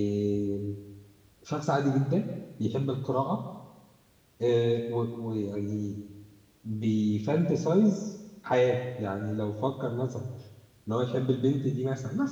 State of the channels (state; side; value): identical; both; correlation 1.00